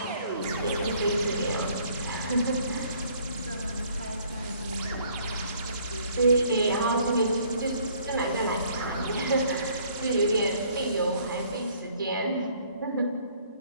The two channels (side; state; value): both; inverted; correlation -0.60